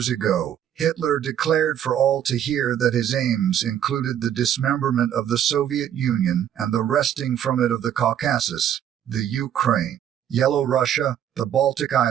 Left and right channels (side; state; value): left; quieter; 10.0 dB